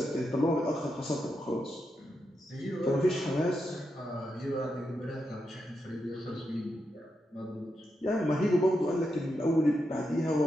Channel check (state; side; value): normal; both; correlation 0.85